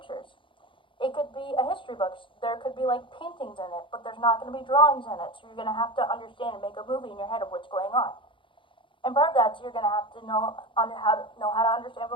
It could be a history book. There could be like paintings in it, but there's not going to be drawings in it. So you're going to have to understand and make a movie in your head of what's going on. And part of that is you're going to have to know how to understand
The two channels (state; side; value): late; right; 0.25 ms